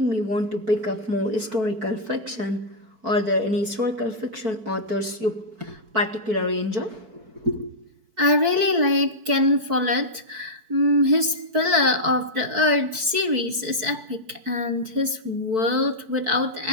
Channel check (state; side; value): late; left; 4.6 ms